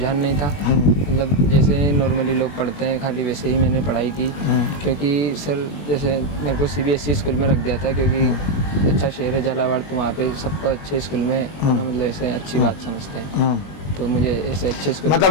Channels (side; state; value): right; late; 21 ms